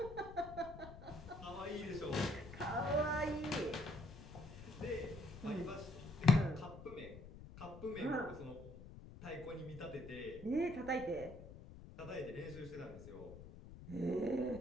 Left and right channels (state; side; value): noise; left; rumble, 14 dB below the sound